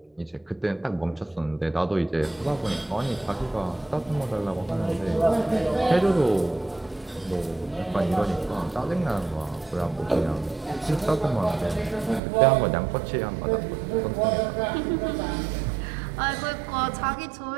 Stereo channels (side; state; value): left; drops out; at 12.2 s